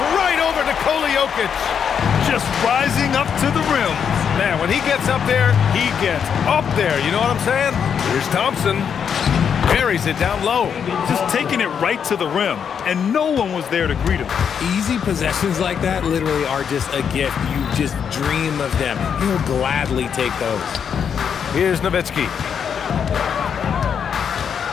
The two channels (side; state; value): right; quieter; 7.5 dB